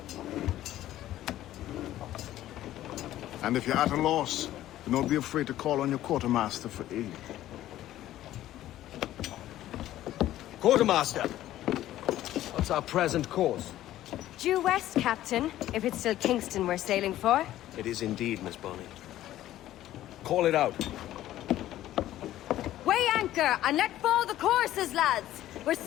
And if you're at a loss, do not be afraid to call on your quartermaster for aid. Quartermaster! What's our present course? Due west, Captain, if it's still Kingston we're sailing for. It is indeed, Miss Bonny. Call it out. Weigh anchor and let fall the courses, lads! We're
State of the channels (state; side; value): quieter; right; 13.7 dB